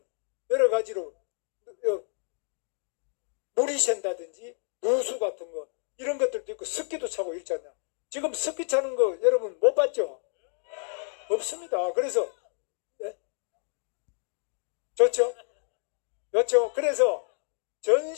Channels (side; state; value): right; silent; 58 dB below the other